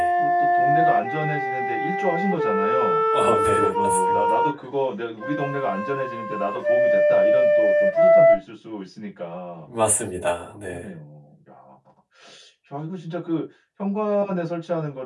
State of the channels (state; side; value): identical; both; correlation 1.00